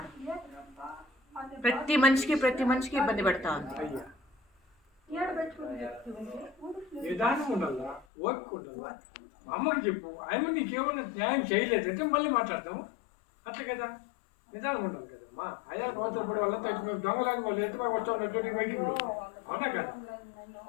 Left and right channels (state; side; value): drops out; right; at 8.1 s